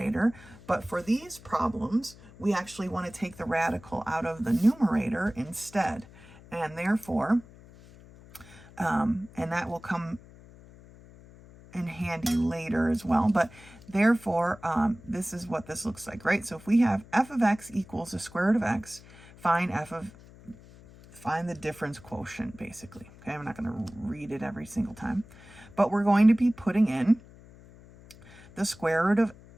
But for these problems, we actually want to take the radical out of the numerator instead. And therefore, and that will come in handy later as well, but therefore this is what this looks like, right? So if we have f of x equals the square root of x, find the difference quotient, basically. Okay, I'm not going to read it every single time, but we're going to be putting in the square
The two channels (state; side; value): noise; left; hum, 21 dB below the sound